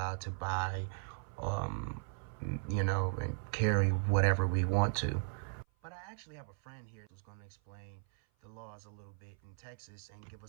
to buy, and carry whatever we want to. But I actually have a friend here who's going to explain the laws a little bit in Texas and give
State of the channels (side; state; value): left; silent; 53 dB below the other